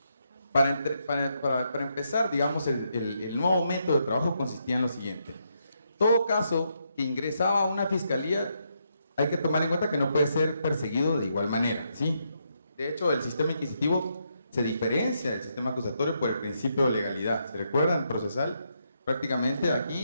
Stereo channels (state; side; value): inverted; both; correlation -0.79